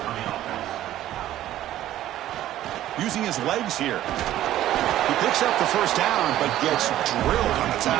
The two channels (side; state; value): left; quieter; 13.3 dB